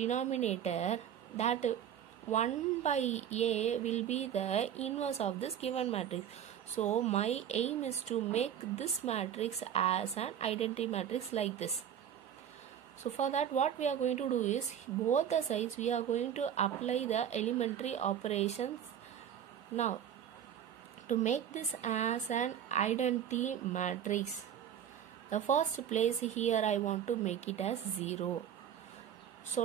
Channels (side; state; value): left; quieter; 9.4 dB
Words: that 1 by A will be the inverse of this given matrix. So my aim is to make this matrix as an identity matrix like this. So for that, what we are going to do is, both the sides we are going to apply the elementary operations. Now to make this as an identity matrix, the first place here I want to make it as 0. So